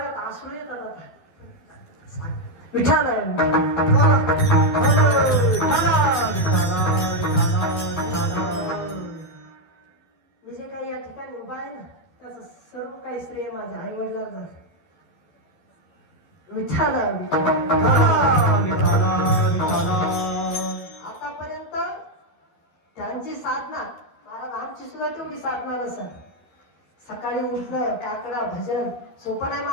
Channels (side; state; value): right; late; 12 ms